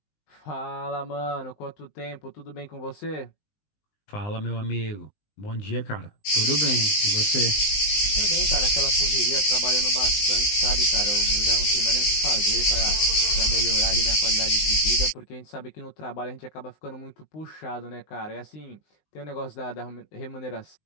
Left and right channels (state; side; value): late; right; 19 ms